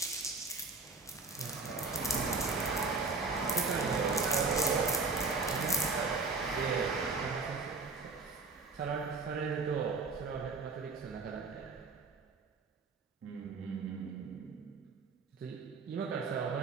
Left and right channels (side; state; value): left; quieter; 4.0 dB